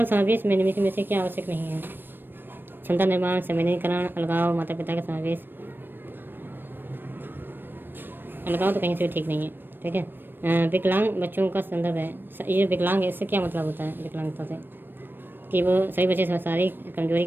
समावेश में निम्नलिखित में से क्या आवश्यक नहीं है? क्षमता निर्माण, संवेदनीकरण, अलगाव, माता पिता का समावेश। अलगाव तो कहीं से भी ठीक नहीं है, ठीक है। विकलांग बच्चों का संदर्भ है। ये विकलांग है, इससे क्या मतलब होता है विकलांगता से? कि वो सभी बच्चे शारीरिक कमजोरी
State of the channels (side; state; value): left; late; 0.095 ms